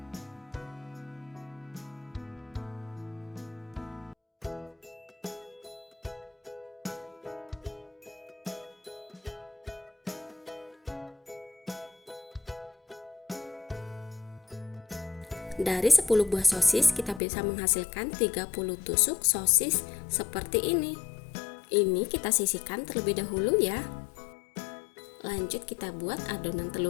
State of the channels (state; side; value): drops out; right; at 17.2 s